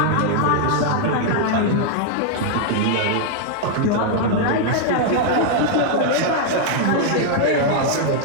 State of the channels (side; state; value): both; different; correlation 0.00